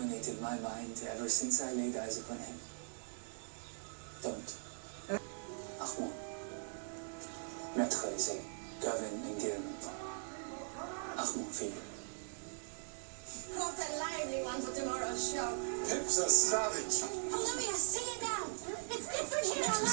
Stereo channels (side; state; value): left; silent; digital silence